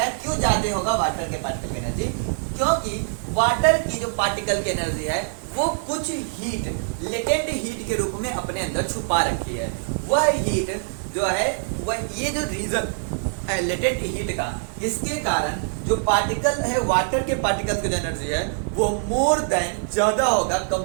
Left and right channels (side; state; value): left; silent; digital silence